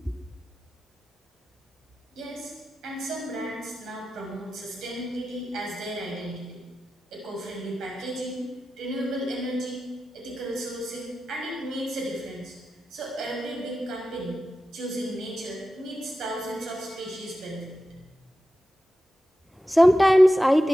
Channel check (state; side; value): normal; both; correlation 0.92